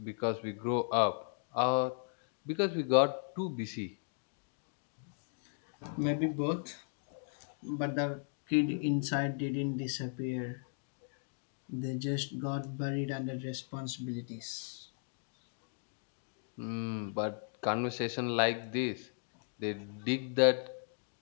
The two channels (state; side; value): silent; right; digital silence